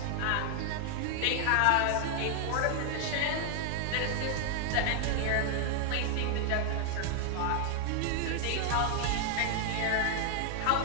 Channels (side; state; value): both; different; correlation 0.00